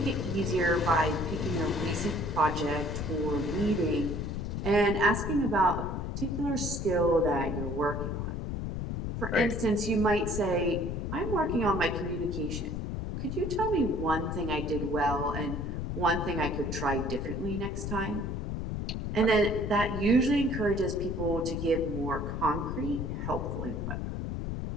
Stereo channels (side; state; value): left; noise; rumble, 3 dB below the sound